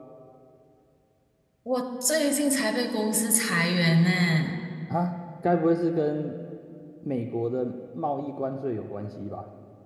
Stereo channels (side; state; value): both; identical; correlation 1.00